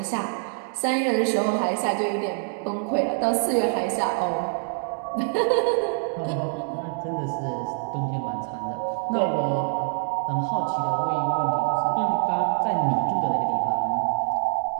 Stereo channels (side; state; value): left; silent; 59 dB below the other